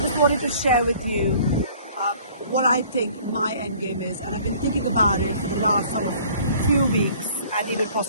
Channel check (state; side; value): inverted; both; correlation -0.53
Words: wanted to share with you what I think my end game is, and I've been thinking about it for the last sort of few weeks and even